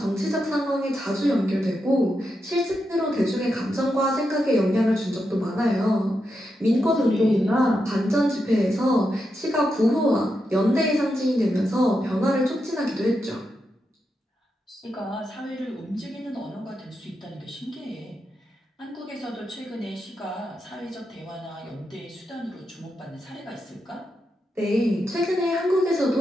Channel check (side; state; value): both; normal; correlation 0.86